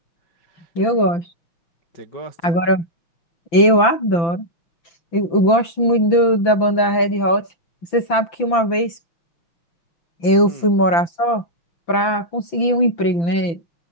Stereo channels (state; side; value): late; right; 5.9 ms